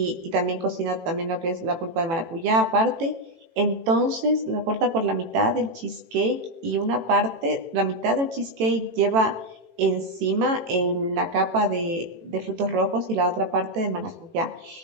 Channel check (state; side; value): late; left; 18 ms